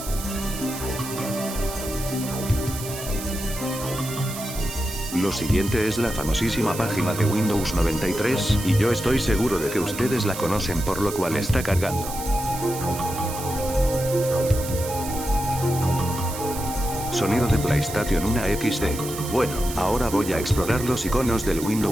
Lo siguiente es la famosísima página de Windows 93, y yo estoy seguro de que ustedes la conocen por lo cual está cargando. Sonido de PlayStation 1 XD. Bueno, ahora voy a explorar los iconos del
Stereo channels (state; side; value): noise; right; hiss, 10 dB below the sound